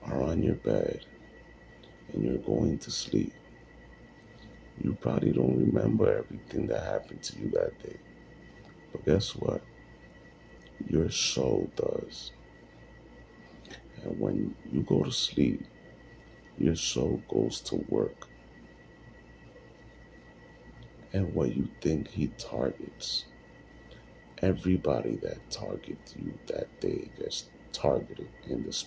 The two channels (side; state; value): both; identical; correlation 1.00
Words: are on your bed and you're going to sleep, you probably don't remember everything that happened to you that day. But guess what? Your soul does. And when you go to sleep, your soul goes to work. And what you think he targets, everybody that targets you that day gets targeted in the